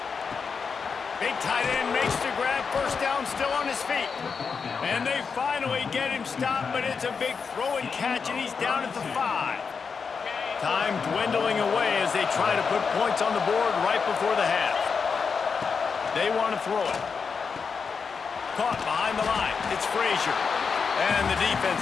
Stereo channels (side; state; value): right; quieter; 5.6 dB